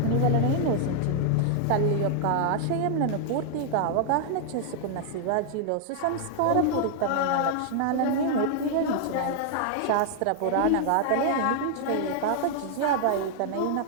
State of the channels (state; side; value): different; both; correlation 0.00